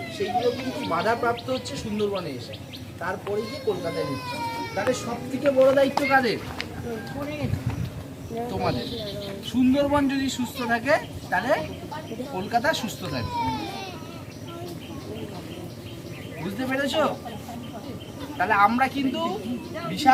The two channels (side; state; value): both; identical; correlation 1.00